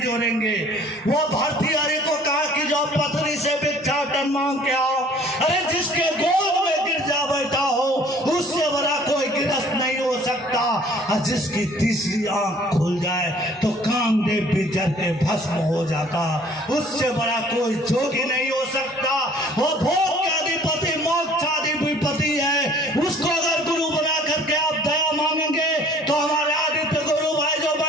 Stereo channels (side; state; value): both; normal; correlation 0.54